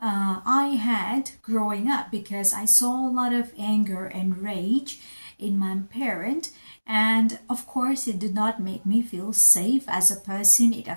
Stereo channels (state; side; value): inverted; both; correlation -1.00